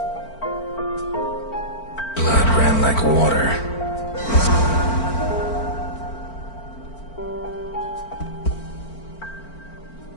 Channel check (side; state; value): right; late; 4.5 ms